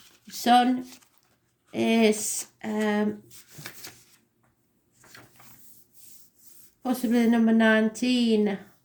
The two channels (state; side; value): identical; both; correlation 1.00